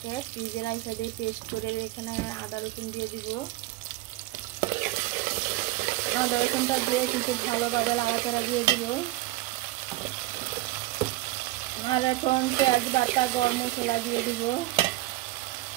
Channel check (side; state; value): left; quieter; 17.4 dB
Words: ফ্রিজে রাখা দিয়ে পেস্ট করে এখানে আদা রসুন দিয়ে দিব। আদা রসুনটা দিয়ে কিন্তু ভালোভাবে নাড়াচাড়া দিয়ে দিব। আর এখন পেঁয়াজ বাটা গরম মশলা দিয়ে দিব।